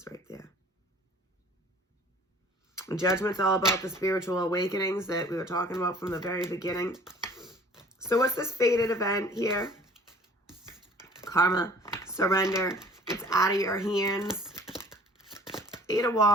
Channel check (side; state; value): both; normal; correlation 0.51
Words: right there. And Judgment's all about the spiritual awakenings that we were talking about from the very beginning. So what's this fated event here? Karma, surrender. It's out of your hands. 8 of